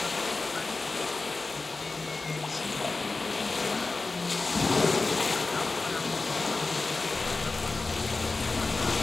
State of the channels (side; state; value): right; quieter; 3.6 dB